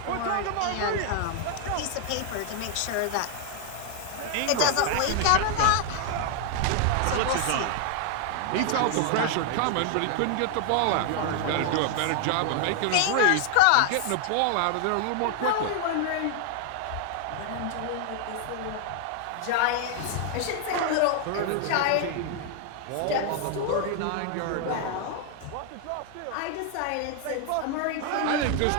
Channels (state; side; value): different; both; correlation 0.00